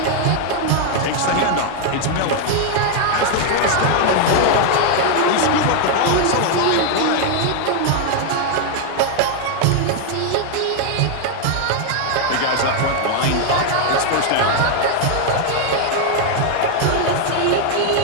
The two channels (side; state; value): both; different; correlation 0.00